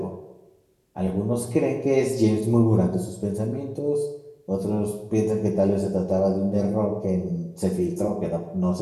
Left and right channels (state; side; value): identical; both; correlation 1.00